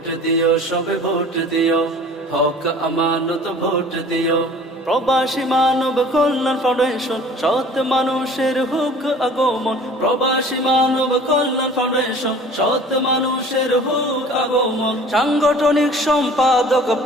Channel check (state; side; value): normal; both; correlation 0.47